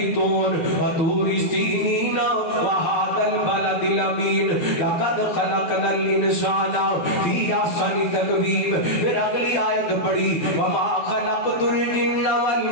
وطور سینین وهذا البلد الامین لقد خلقنا الانسان فی احسن تقویم. پھر اگلی آیت پڑھی وما خلقت الجن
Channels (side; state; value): right; late; 12 ms